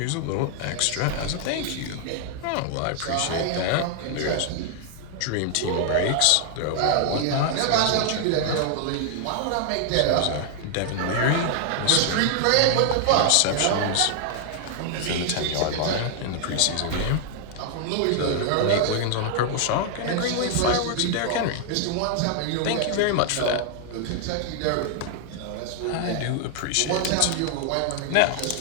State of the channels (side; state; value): both; different; correlation 0.00